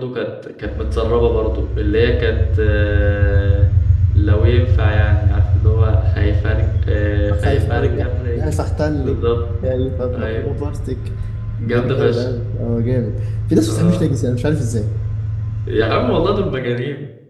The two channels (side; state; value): both; identical; correlation 1.00